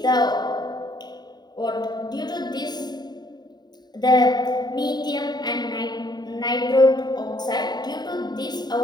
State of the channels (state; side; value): late; right; 0.20 ms